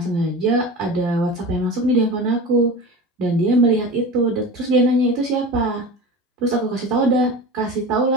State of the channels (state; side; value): normal; both; correlation 0.31